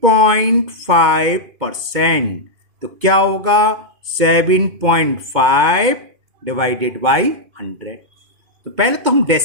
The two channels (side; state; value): left; late; 2.5 ms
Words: तो क्या होगा? 7.5 डिवाइडेड बाई 100। तो पहले तो हम